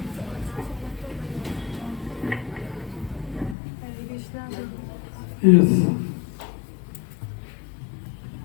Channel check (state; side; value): drops out; right; at 3.6 s